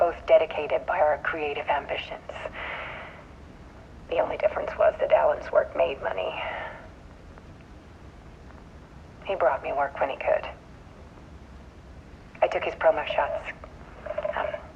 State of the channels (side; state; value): both; identical; correlation 1.00